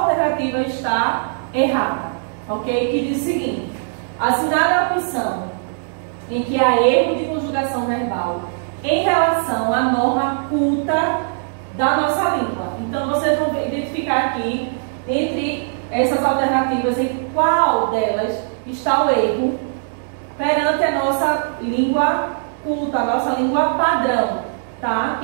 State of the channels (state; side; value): silent; left; digital silence